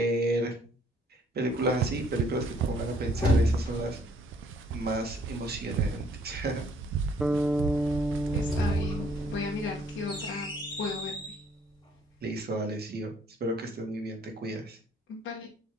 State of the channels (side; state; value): both; normal; correlation 0.63